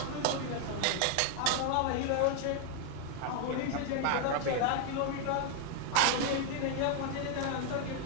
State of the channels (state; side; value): different; both; correlation 0.01